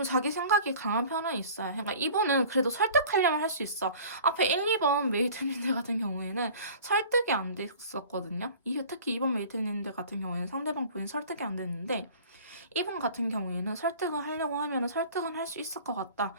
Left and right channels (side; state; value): both; inverted; correlation -0.44